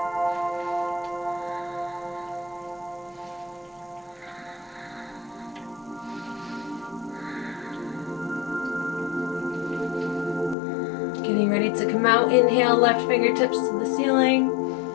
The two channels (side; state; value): right; drops out; at 10.6 s